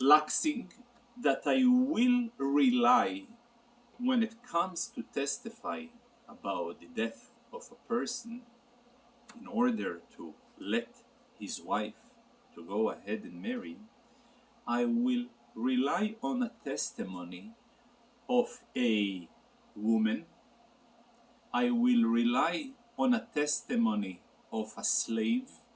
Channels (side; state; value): both; identical; correlation 1.00